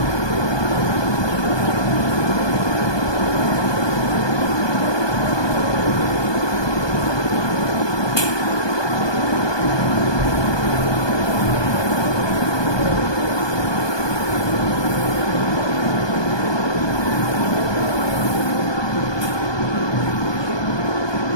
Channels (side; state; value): right; late; 1.2 ms